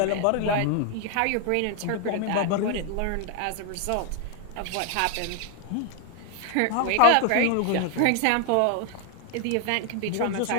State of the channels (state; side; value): different; both; correlation 0.00